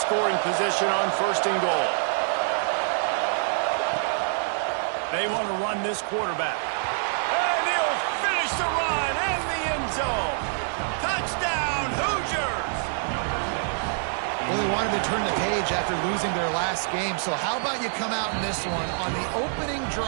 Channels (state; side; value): silent; left; 61 dB below the other